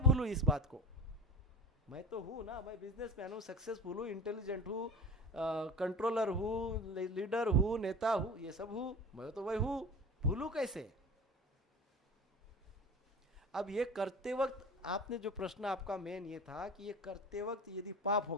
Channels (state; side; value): normal; both; correlation 0.35